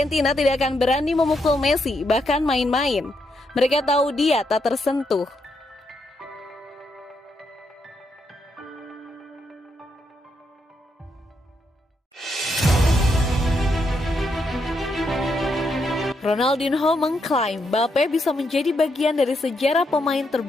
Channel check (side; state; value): both; normal; correlation 0.79